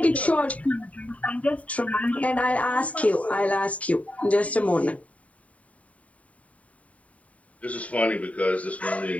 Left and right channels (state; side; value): late; right; 0.068 ms